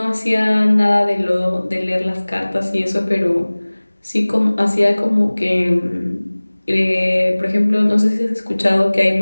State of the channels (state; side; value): inverted; both; correlation -1.00